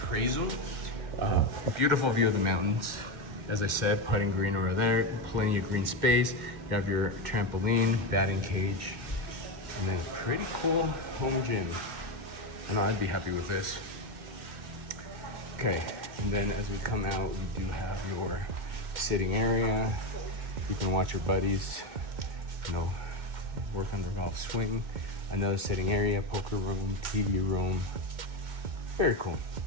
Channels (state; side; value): late; left; 2.1 ms